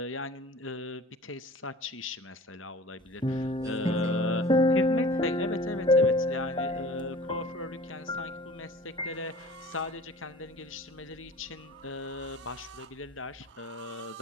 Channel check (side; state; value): both; normal; correlation 0.43